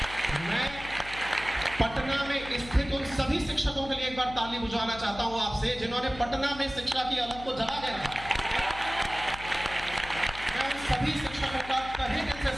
मैं पटना में स्थित उन सभी शिक्षकों के लिए एक बार ताली बुझाना चाहता हूं आपसे, जिन्होंने पटना में शिक्षा की अलग को जला के रखा। सभी शिक्षकों का तहे दिल से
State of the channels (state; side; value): noise; left; hum, 14 dB below the sound